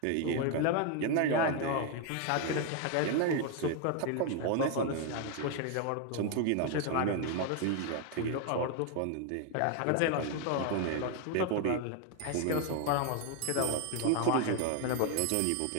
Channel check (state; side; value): different; both; correlation 0.01